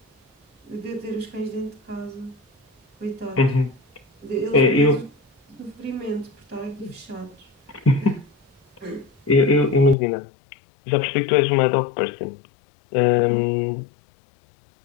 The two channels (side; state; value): right; drops out; at 10.0 s